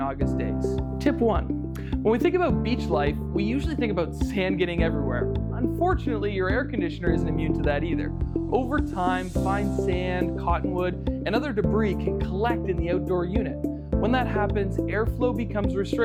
August days. Tip 1. When we think about beach life, we usually think about sand getting everywhere. Unfortunately, your air conditioner isn't immune to that either. Over time, fine sand, cottonwood, and other debris can collect in the outdoor unit. When that happens, airflow becomes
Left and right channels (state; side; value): identical; both; correlation 1.00